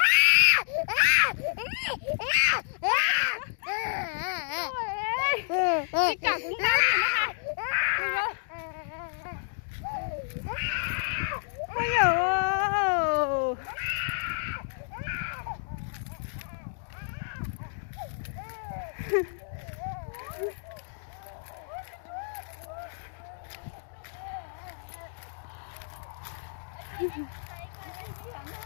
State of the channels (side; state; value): right; silent; digital silence